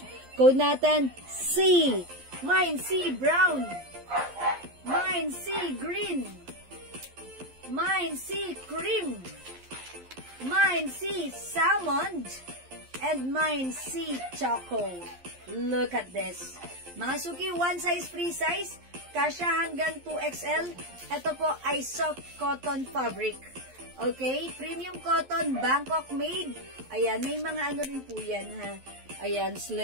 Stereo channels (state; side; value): late; left; 11 ms